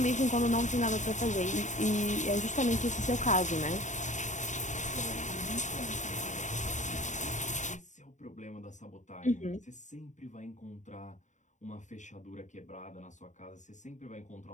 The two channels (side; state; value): right; late; 0.35 ms